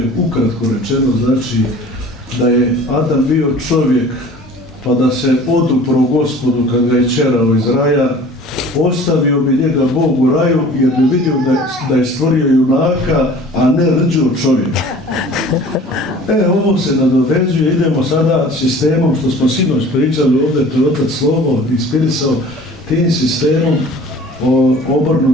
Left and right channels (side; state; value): both; normal; correlation 0.46